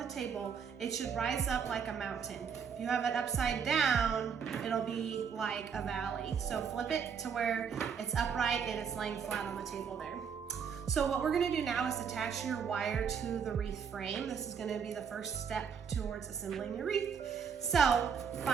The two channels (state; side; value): quieter; left; 6.8 dB